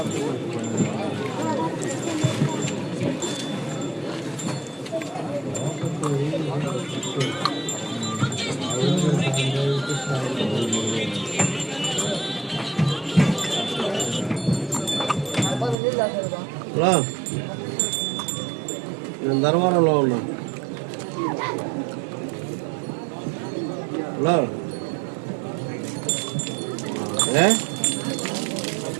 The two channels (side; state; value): left; drops out; at 15.8 s